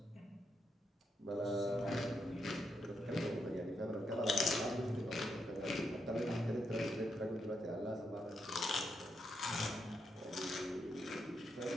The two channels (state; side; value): normal; both; correlation 0.81